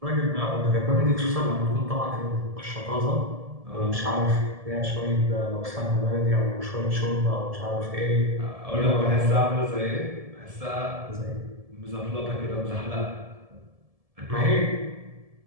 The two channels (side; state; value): left; late; 1.7 ms